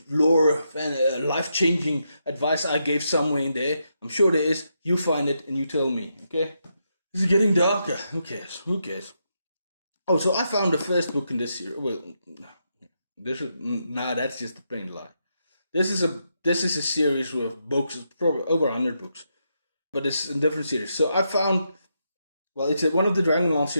lore and life-changing advice I gave somewhere in there. I'm sure there is. You find it and you tell me, okay? This is getting darker. Who cares? Oh, so I found the first book in this series. Well, that's just a plain lie. This is a series with books, probably over 100 books, but it's a different series. So I found, it's one of the Dragonlance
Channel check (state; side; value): inverted; both; correlation -0.82